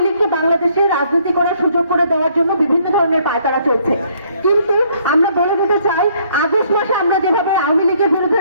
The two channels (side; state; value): both; inverted; correlation -0.65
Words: লীগকে বাংলাদেশে রাজনীতি করার সুযোগ করে দেওয়ার জন্য বিভিন্ন ধরনের পায়তারা চলছে। কিন্তু আমরা বলে দিতে চাই, আগস্ট মাসে আমরা যেভাবে আওয়ামী লীগের বিরুদ্ধে